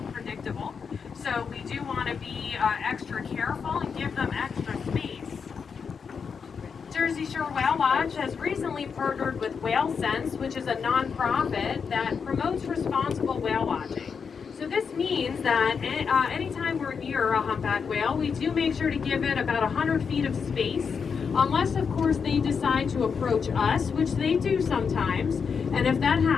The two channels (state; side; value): quieter; right; 6.1 dB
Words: So we do want to be extra careful and give them extra space. Jersey Shore Whale Watch has recently partnered with Whale Sense, which is a nonprofit that promotes responsible whale watching. So this means that anytime we're near a humpback whale, we do make sure to give it about 100 feet of space, unless of course they decide to approach us, which they do sometimes. And if that